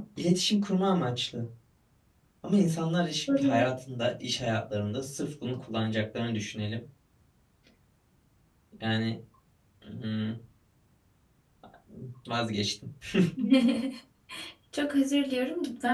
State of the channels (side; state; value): both; identical; correlation 1.00